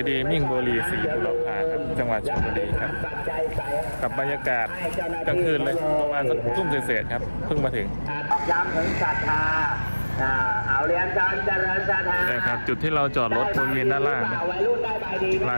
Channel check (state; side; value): inverted; both; correlation -1.00